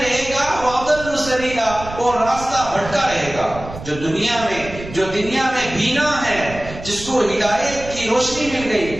گا، وہ اضل سبیلا، اور راستہ بھٹکا رہے گا۔ جو دنیا میں بینا ہے، جس کو ہدایت کی روشنی مل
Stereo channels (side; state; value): right; noise; rumble, 13 dB below the sound